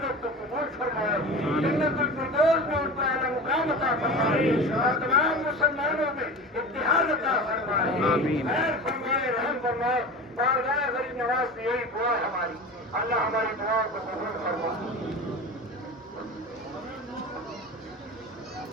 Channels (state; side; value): normal; both; correlation 0.32